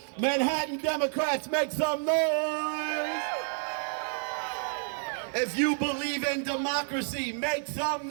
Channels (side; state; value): left; silent; digital silence